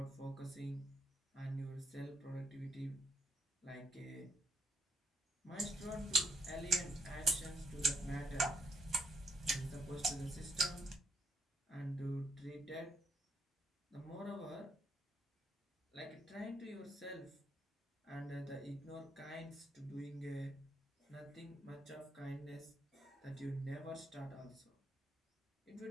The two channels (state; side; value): normal; both; correlation 0.74